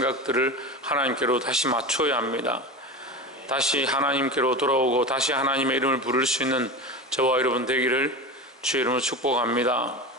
하나님께로 다시 맞춰야 합니다. 다시 하나님께로 돌아오고 다시 하나님의 이름을 부를 수 있는 저와 여러분 되기를 주의 이름으로 축복합니다.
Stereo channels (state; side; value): normal; both; correlation 0.26